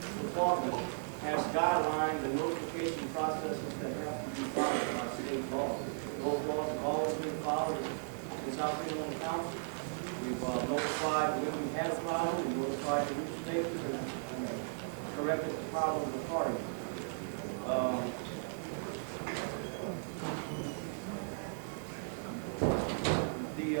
department has guidelines and notification processes that have to be followed by state law. Those laws have always been followed since I've been on the council. We've notified when we had a problem, we notified the newspapers and corrected the problems accordingly. The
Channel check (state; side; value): silent; left; digital silence